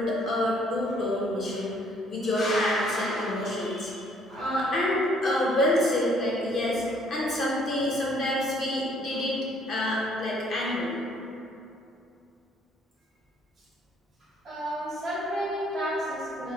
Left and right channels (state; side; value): normal; both; correlation 0.63